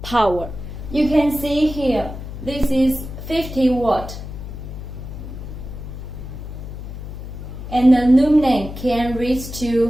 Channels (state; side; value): noise; left; hum, 9 dB below the sound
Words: power. You can see here, this is 50 watt. And the lumen can reach